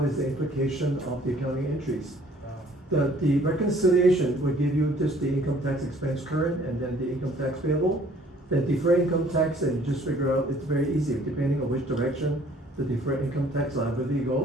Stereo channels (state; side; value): normal; both; correlation 0.57